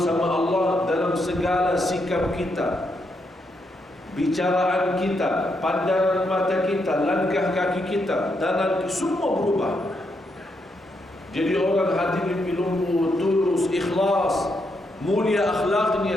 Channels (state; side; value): normal; both; correlation 0.79